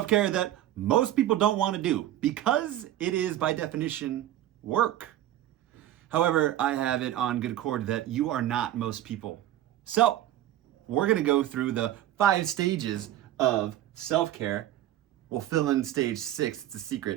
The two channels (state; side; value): quieter; left; 13.0 dB